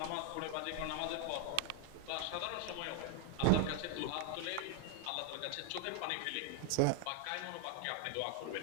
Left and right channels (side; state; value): both; different; correlation 0.00